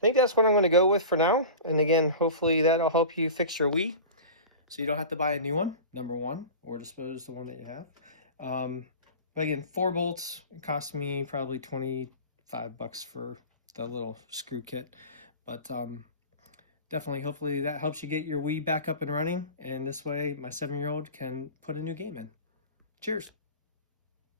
think that's what I'm going to go with for now. And again, hopefully that'll help you fix your Wii, so you don't have to buy a new one, number one, or dispose the one that you have. But again, 4 bolts. It cost me probably 25 bucks for the little screw kit. But definitely, hopefully that helps you get your Wii back up and running. And this way, my 7-year-old can put a new game in. Cheers.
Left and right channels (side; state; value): both; inverted; correlation -0.34